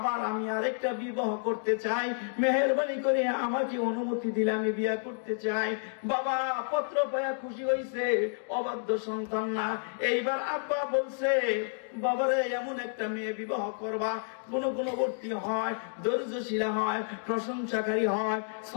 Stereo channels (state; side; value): silent; right; digital silence